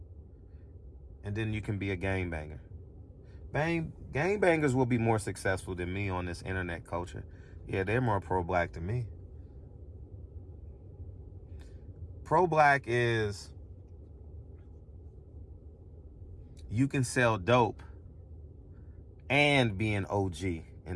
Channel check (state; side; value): identical; both; correlation 1.00